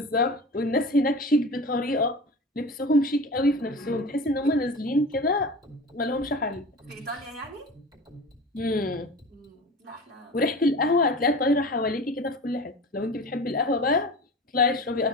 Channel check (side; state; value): both; normal; correlation 0.34